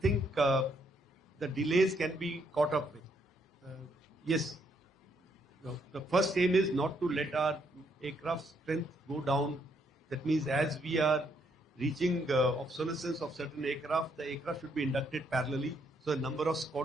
the delays can be caught up with. Yes, the first aim is not to let our aircraft strength go down. That means as we are reaching obsolescence of certain aircraft, the aircraft should be inducted parallelly. So the number of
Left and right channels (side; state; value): both; normal; correlation 0.73